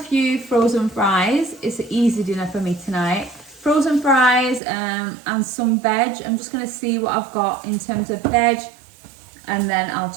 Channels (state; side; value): drops out; left; at 4.6 s